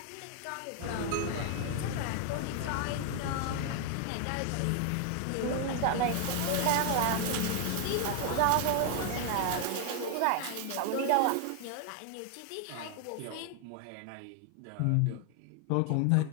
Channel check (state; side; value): different; both; correlation 0.00